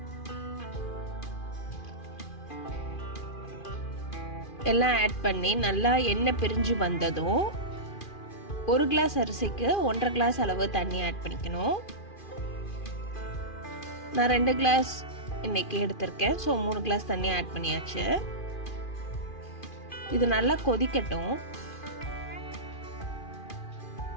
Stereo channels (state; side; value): late; right; 2.4 ms